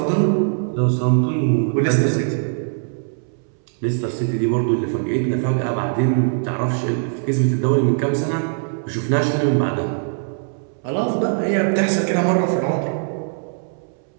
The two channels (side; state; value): left; silent; 65 dB below the other